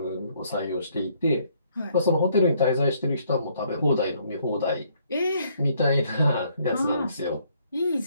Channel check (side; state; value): both; inverted; correlation -0.67